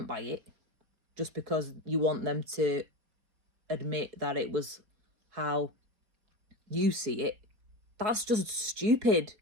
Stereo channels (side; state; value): left; late; 4.7 ms